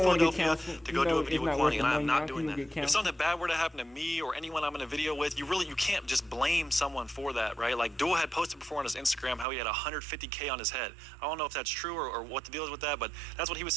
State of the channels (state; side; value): drops out; left; at 9.5 s